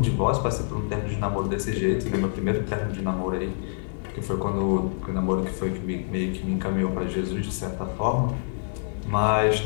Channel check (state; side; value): silent; right; digital silence